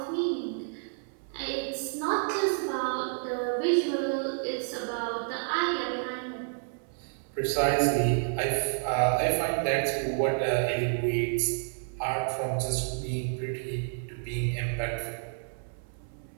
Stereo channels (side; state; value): left; silent; 58 dB below the other